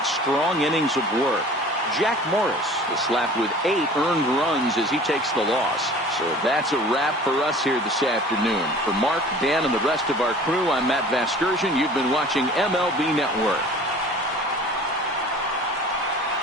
strong innings of work. Jack Morris is slapped with 8 earned runs as he takes the loss. So that's a wrap for us here this afternoon. For Mark, Dan, and the rest of our crew, I'm Matt Vasgersian. You've been watching MLB Network.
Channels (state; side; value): normal; both; correlation 0.45